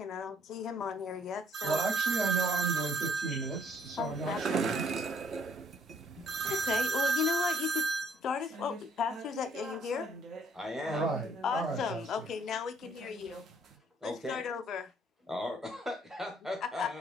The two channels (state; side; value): normal; both; correlation 0.64